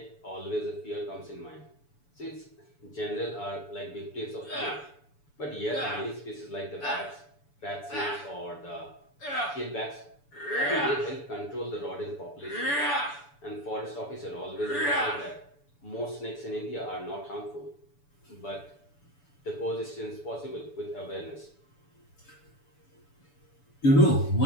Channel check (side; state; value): right; late; 7.0 ms